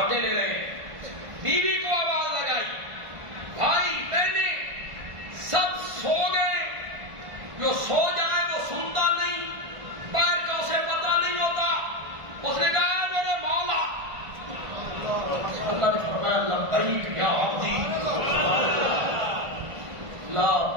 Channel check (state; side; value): late; left; 1.5 ms